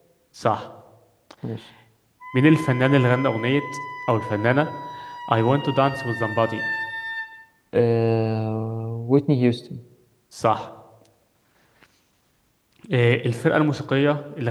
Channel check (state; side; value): identical; both; correlation 1.00